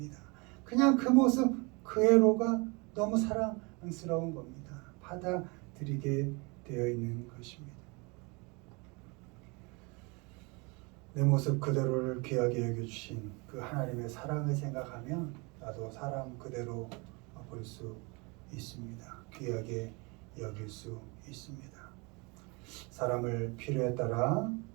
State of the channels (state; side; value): quieter; left; 28.9 dB